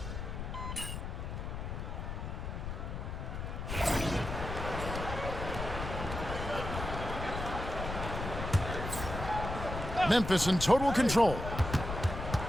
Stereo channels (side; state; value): left; noise; rumble, 5 dB below the sound